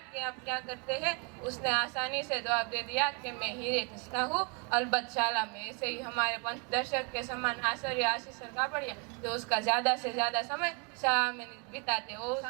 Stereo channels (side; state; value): left; quieter; 34.3 dB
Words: कि आप क्या करते हैं। उसने आसानी से जवाब दे दिया कि मैं हीरे घिसता हूँ अलबत्त शाला में। ऐसे ही हमारे पंचदर्शक के समान आचार्य आशीष कापड़िया, जो उसका ज्यादा से ज्यादा समय शाह में बिताते